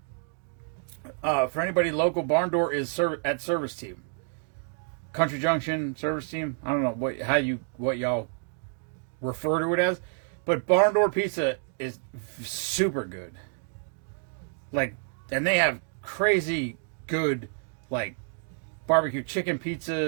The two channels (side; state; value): left; silent; 55 dB below the other